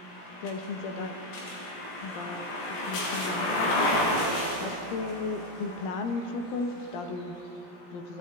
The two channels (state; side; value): late; right; 17 ms